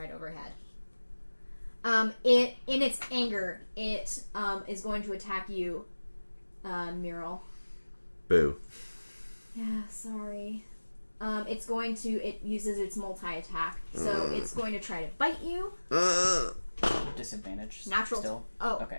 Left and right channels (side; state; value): both; inverted; correlation -1.00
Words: overhead. In its anger, it is going to attack you, Mural. Boo. Yeah, sorry. It uses its multi-attack, so it's going to try to bite you. Disadvantage. Natural. Still. Oh, Okay.